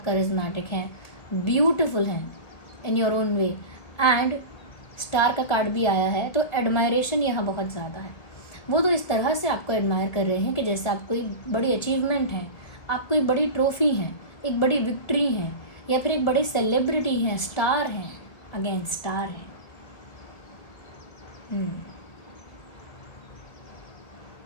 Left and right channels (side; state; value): right; late; 1.9 ms